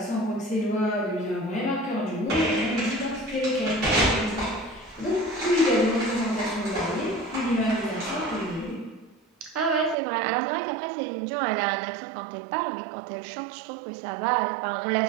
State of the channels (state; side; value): drops out; left; at 10.0 s